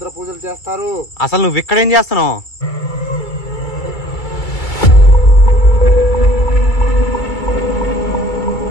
పూజలు చేస్తారు. అసలు నువ్వు ఇక్కడ ఏం చేస్తున్నావు?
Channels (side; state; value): right; late; 2.3 ms